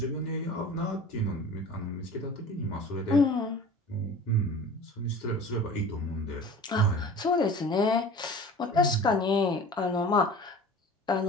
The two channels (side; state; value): both; normal; correlation 0.40